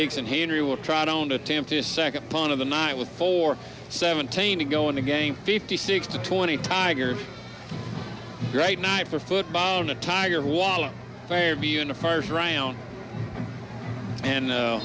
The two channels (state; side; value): identical; both; correlation 1.00